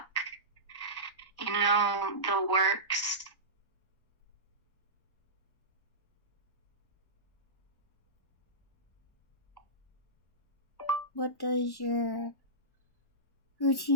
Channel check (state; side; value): late; right; 1.1 ms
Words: the works. what does your